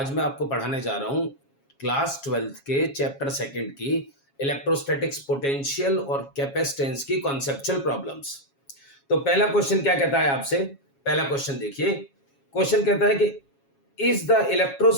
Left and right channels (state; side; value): late; right; 7.3 ms